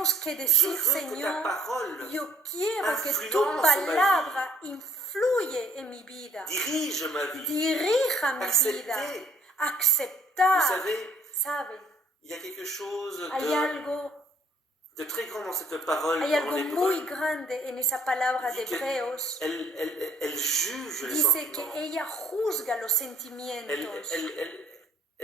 que je decir, veux que ta Señor, parole yo quiero que tu influence ma vie. palabra influye en mi vida, dirige ma vie. dirija mi vida, Accepter. Vous aceptar. savez, ¿Sabe? il y a quelque chose Hay algo, de très grand dans cette parole hay en algo hébreu. muy grande en esa palabra de Dit que Hebreos. Elle juge les Dice sentiments. que ella juzga los sentimientos,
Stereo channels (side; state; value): both; normal; correlation 0.60